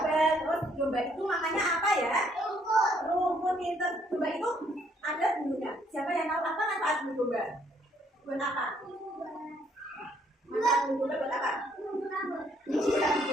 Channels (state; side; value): normal; both; correlation 0.68